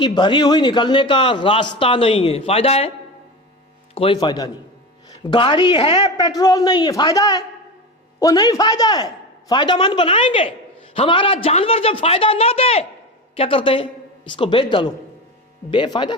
بھری ہوئی نکلنے کا راستہ نہیں ہے، فائدہ ہے؟ کوئی فائدہ نہیں. گاڑی ہے، پیٹرول نہیں ہے، فائدہ ہے؟ وہ نہیں فائدہ ہے. فائدہ مند بنائیں گے. ہمارا جانور جب فائدہ نہ دے کیا کرتے ہیں؟ اس کو بیچ ڈالو. بے فائدہ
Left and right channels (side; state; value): both; normal; correlation 0.25